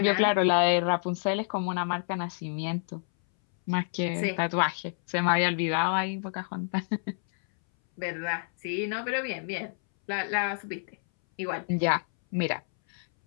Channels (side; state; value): right; silent; 59 dB below the other